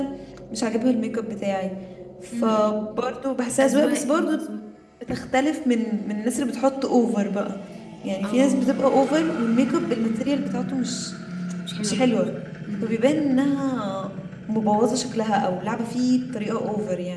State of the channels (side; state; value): both; identical; correlation 1.00